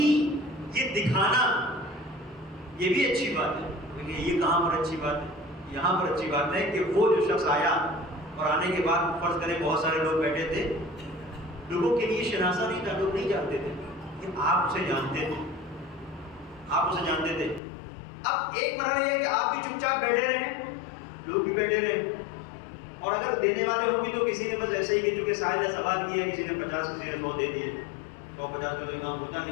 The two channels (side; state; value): right; drops out; at 17.6 s